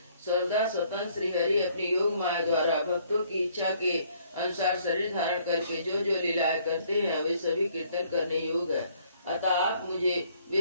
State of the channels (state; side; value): inverted; both; correlation -0.64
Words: सर्वदा स्वतंत्र श्री हरि अपनी योग माया द्वारा भक्तों की इच्छा के अनुसार शरीर धारण करके जो जो लीलाएं करते हैं वे सभी कीर्तन करने योग्य है। अतः आप मुझे